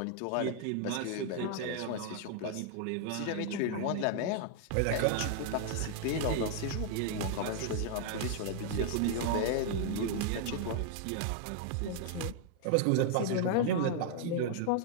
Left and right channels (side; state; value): both; different; correlation 0.00